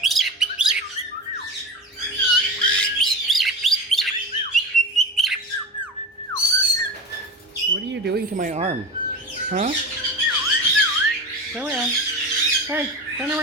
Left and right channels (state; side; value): normal; both; correlation 0.27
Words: What are you doing to my arm? Huh? Turn around. Hey, turn